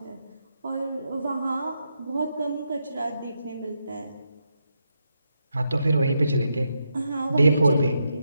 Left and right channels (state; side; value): inverted; both; correlation -0.83